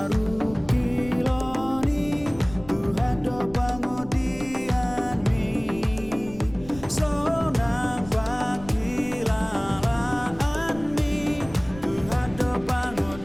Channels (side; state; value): left; noise; rumble, 17 dB below the sound